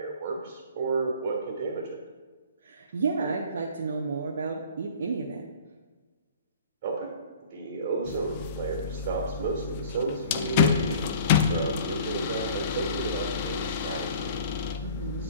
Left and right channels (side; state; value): both; inverted; correlation -0.46